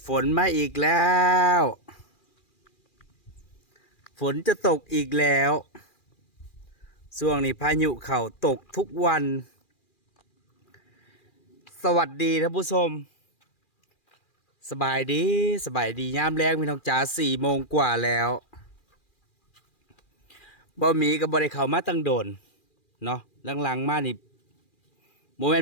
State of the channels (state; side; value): late; right; 2.4 ms